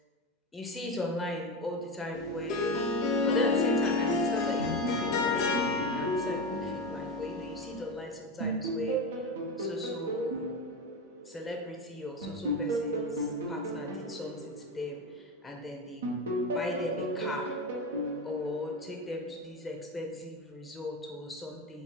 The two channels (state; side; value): normal; both; correlation 0.19